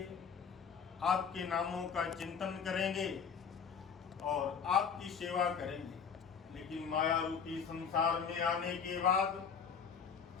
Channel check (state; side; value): quieter; right; 6.6 dB